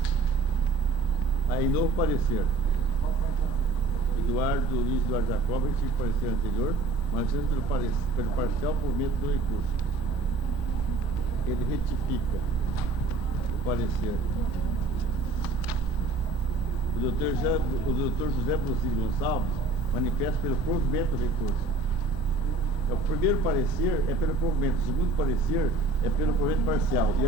Aí, novo parecer. Luiz Eduardo Jacob, tive parecer anterior, mas pelo parcial provimento do recurso. Ele retifica o parecer. O doutor José Brusino Gonçalves manifesta pelo provimento do recurso. O primeiro parecer é pelo provimento, o segundo parecer é pelo provimento parcial, e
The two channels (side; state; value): left; quieter; 3.2 dB